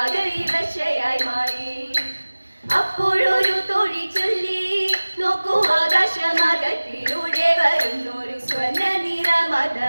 മാറി. അപ്പോഴൊരു തോഴി ചൊല്ലി, നോക്കൂ ആകാശമാകത്തിലൂടെ വരുന്നൊരു സ്വർണ്ണ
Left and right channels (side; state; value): both; inverted; correlation -1.00